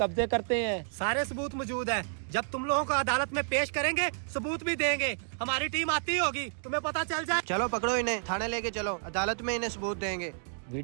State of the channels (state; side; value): silent; left; digital silence